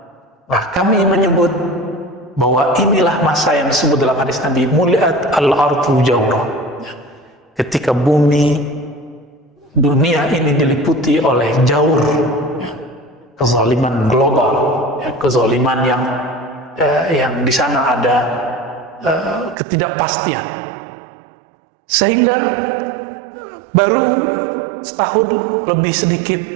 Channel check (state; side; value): drops out; left; at 19.6 s